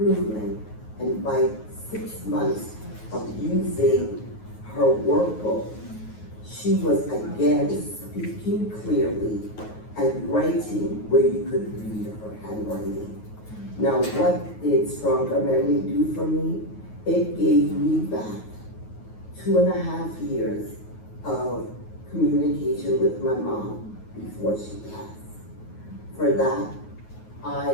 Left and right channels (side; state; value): right; late; 9.4 ms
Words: And by 6 months of using her workbook, she was again speaking clearly and writing where you could read her handwriting. Now, what did StrongerMemory do for me? It gave me back 2.5 years of communication with my mom before she passed. For that, I